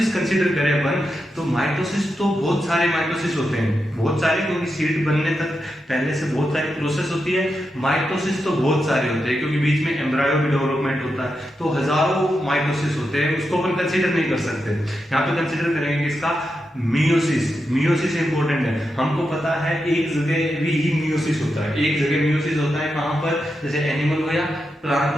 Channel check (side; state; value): both; normal; correlation 0.87